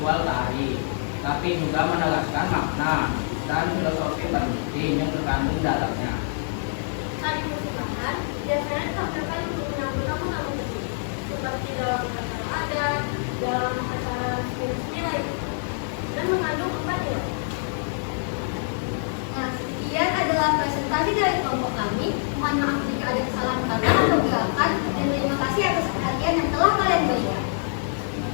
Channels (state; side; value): silent; right; 61 dB below the other